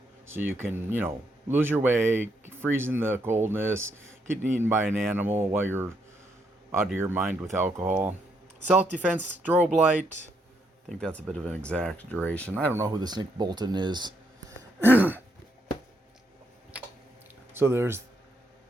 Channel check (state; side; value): normal; both; correlation 0.76